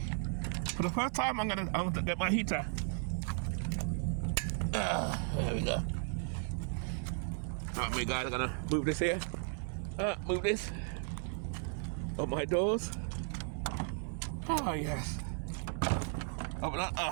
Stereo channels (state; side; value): silent; left; 54 dB below the other